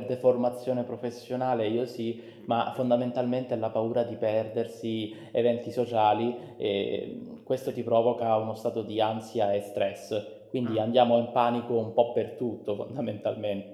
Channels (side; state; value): both; identical; correlation 1.00